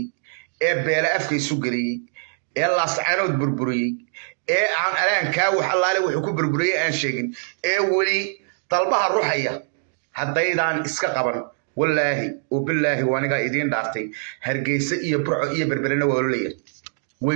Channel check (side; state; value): left; silent; digital silence